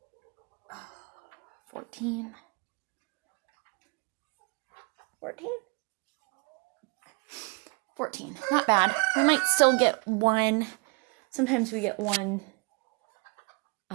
14, 14. Not bad. We might still get one. Sometimes we get one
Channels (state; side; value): quieter; left; 30.7 dB